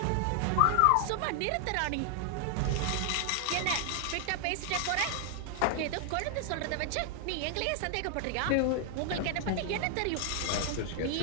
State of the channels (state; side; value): different; both; correlation 0.00